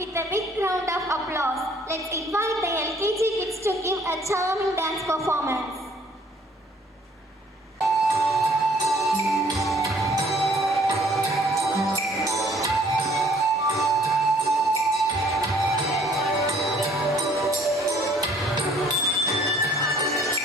a big round of applause, let's invite the LKG kids to give a charming dance performance.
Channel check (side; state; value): both; normal; correlation 0.59